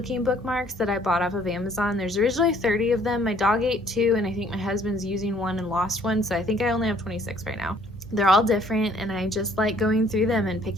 bookmarks that I bought off of Amazon. There's originally 30 of them. My dog ate 2, and I think my husband's using one and lost one, so I think I only have 26 right now. They're all different, and I just like going through them and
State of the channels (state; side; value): normal; both; correlation 0.60